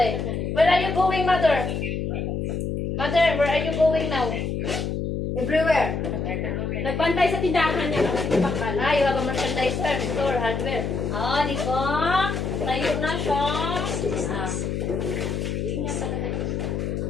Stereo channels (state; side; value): noise; left; hum, 2 dB below the sound